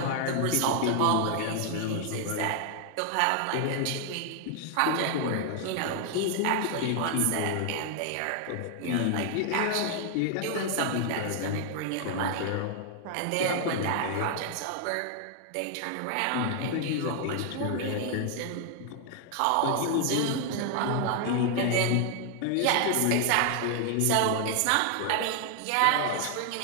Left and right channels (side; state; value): both; different; correlation 0.00